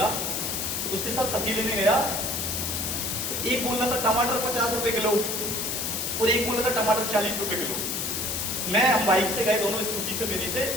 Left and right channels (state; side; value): noise; left; hiss, 2 dB below the sound